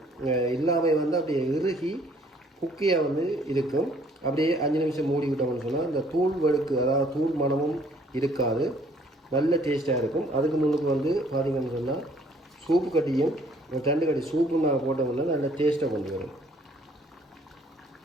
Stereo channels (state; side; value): normal; both; correlation 0.60